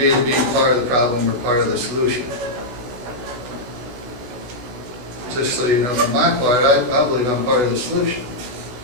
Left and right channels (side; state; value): left; late; 16 ms